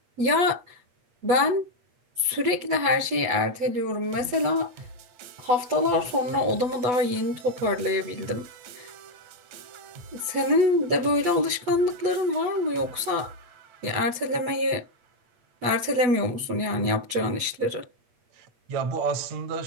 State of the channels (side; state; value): left; late; 8.2 ms